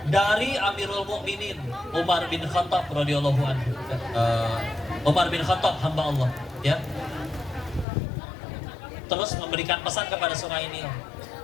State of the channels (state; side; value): drops out; right; at 7.9 s